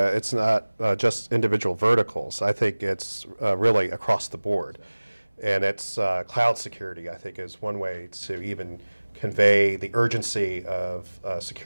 not just individual verticals. I think it's really across the board. And it's cloud security, I think, is one way to even convey the urgency of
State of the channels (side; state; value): both; inverted; correlation -1.00